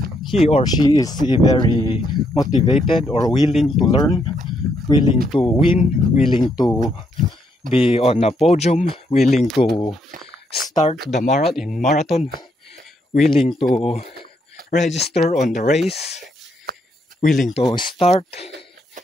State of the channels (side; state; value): both; normal; correlation 0.75